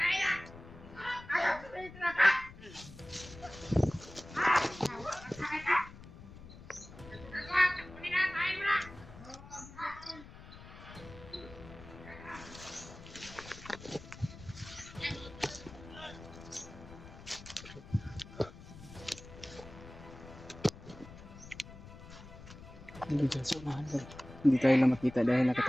na! Ayaw! Sabihin na ka! Bawa tayo na! Bawa! Duli na tayo mo na! Hindi dyan sa unahan ko. Hindi tayo lang makita dahil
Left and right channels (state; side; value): noise; left; rumble, 16 dB below the sound